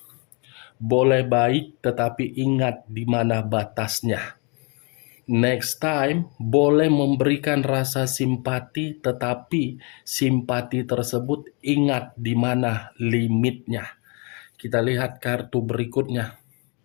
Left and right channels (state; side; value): quieter; right; 33.4 dB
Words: boleh baik tetapi ingat di mana batasnya. Next time, boleh memberikan rasa simpati tetapi simpati tersebut ingat di mana limitnya. Kita lihat kartu berikutnya.